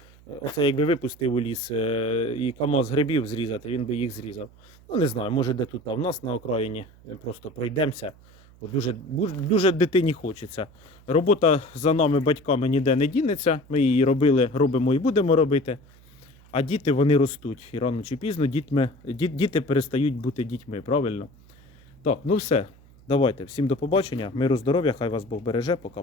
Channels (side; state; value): right; noise; hum, 25 dB below the sound